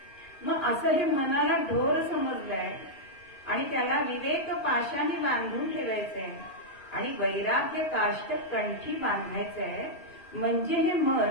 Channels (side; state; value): right; late; 2.5 ms